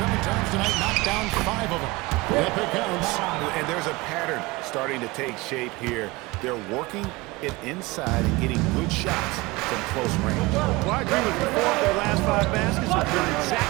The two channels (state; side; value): quieter; left; 22.4 dB